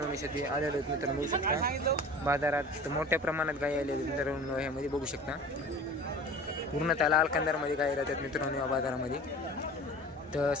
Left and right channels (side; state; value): both; normal; correlation 0.40